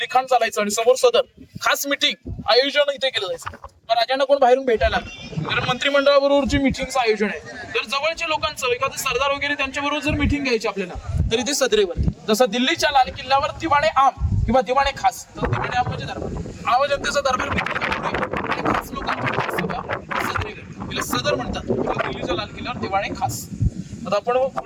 लिखाण चालायचं आणि समोर सदर, खास मिटिंग आयोजन इथे केलं जायचं. राजांना कोण बाहेरून भेटायला लागतं, कारण मंत्रिमंडळाबरोबरची मिटिंगचं आयोजन आहे. तर जवळच्या लोकांचं, एखादे सरदार वगैरे त्यांच्याबरोबर जर मिटिंग घ्यायची आपल्याला, तर इथे सदरेवरती, जसं दिल्लीच्या लाल किल्ल्यावर दिवाणे आम किंवा दिवाणे खास, तर दिवाणे आम म्हणजे दरबार, आम जनतेचा दरबार आणि खास लोकांची सभा सदरेवर, तिला सदर म्हणतात. दिल्लीच्या लाल किल्ल्यावर दिवाणे खास. आता आपण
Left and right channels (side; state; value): both; identical; correlation 1.00